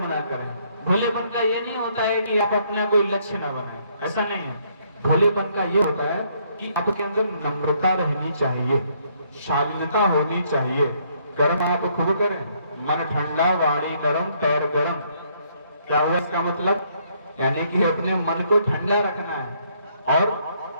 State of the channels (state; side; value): inverted; both; correlation -0.68